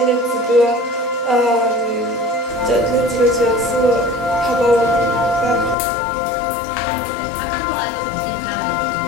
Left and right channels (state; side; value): drops out; right; at 5.8 s